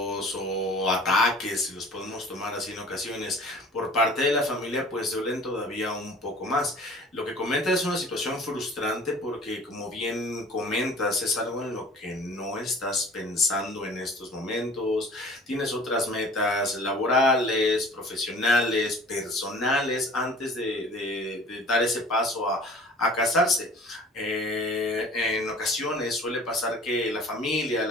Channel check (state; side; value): normal; both; correlation 0.46